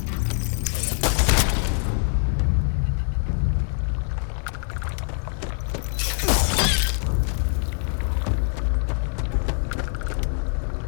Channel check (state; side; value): silent; right; 57 dB below the other